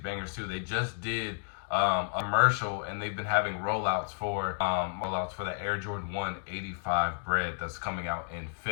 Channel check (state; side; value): silent; right; digital silence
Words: too. They just did a commercial, and they've been having rollouts for the Air Jordan 1 85 bread that's coming out in